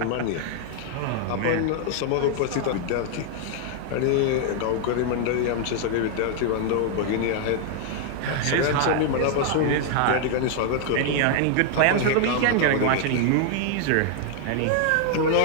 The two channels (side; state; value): both; different; correlation 0.00